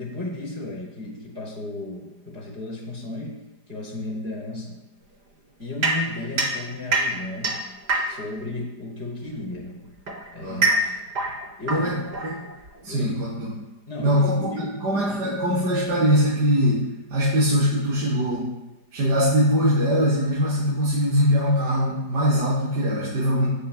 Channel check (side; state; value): left; late; 5.0 ms